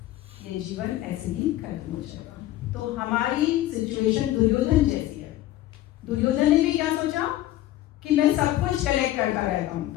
ये जीवन ऐसे ही खत्म हो जाएगा। तो हमारी सिचुएशन दुर्योधन जैसी है। दुर्योधन ने भी क्या सोचा कि मैं सब कुछ कलेक्ट करता रहता हूँ,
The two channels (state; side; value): quieter; right; 14.9 dB